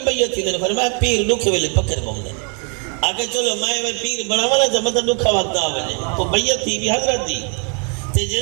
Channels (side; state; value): left; quieter; 38.2 dB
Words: بیعت تھی فرمایا پیر دکھے ویلے پکر بم دیں آکے چلو میں پیر بڑا والا جب مطلب دکھا وقت آوے تو بیعت تھی بھی حضرت دی تے